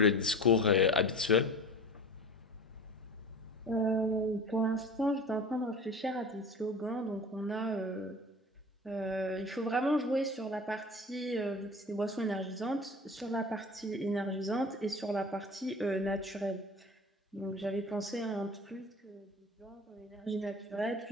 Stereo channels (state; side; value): normal; both; correlation 0.37